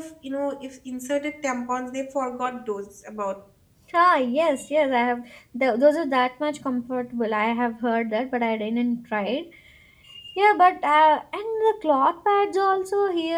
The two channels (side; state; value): both; identical; correlation 1.00